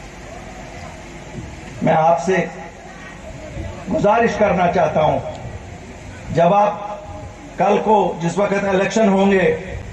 मैं आपसे गुजारिश करना चाहता हूं, जब आप कल को जिस वक्त इलेक्शन होंगे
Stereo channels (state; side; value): identical; both; correlation 1.00